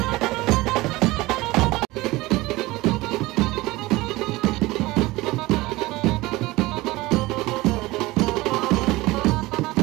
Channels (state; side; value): quieter; left; 20.1 dB